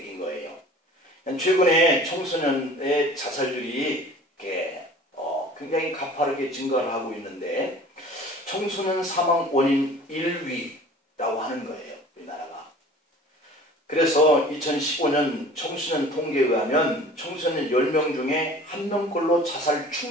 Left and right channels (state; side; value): normal; both; correlation 0.45